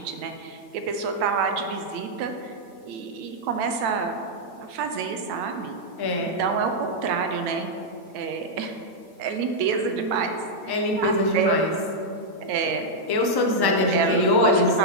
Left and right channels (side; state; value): left; late; 9.0 ms